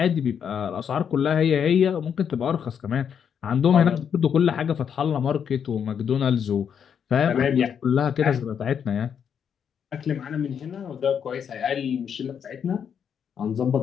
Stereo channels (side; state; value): right; quieter; 7.8 dB